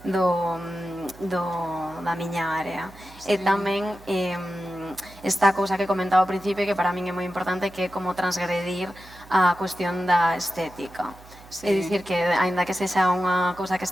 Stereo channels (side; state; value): right; noise; hum, 21 dB below the sound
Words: da miña área. E tamén esta cousa que comentaba ao principio, que para min é moi importante, que é como transgredir a cuestión da estética. Sí. É dicir que, aínda que sexa unha cousa que